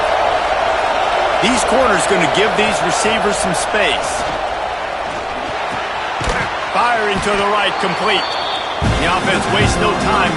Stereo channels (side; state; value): both; identical; correlation 1.00